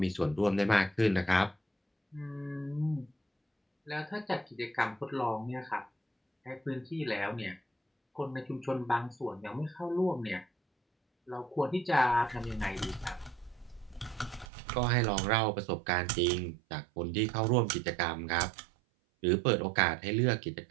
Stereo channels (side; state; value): left; drops out; at 14.5 s